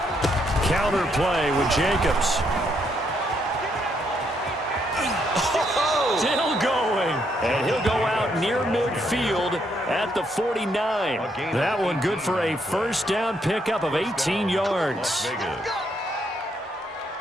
Counter play with Jacobs. Still going. And he'll go out near midfield at the 49. That one good for a first down pickup of 18 yards.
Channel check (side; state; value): both; normal; correlation 0.74